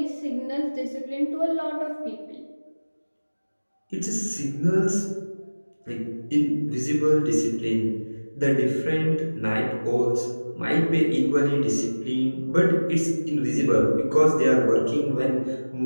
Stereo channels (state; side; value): inverted; both; correlation -1.00